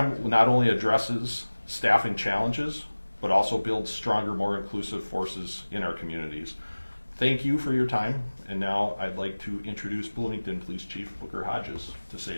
not only addresses staffing challenges, but also builds stronger, more inclusive forces in our communities. Thank you for your time, and now I'd like to introduce Bloomington Police Chief Booker Hodges to say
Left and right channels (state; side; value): inverted; both; correlation -1.00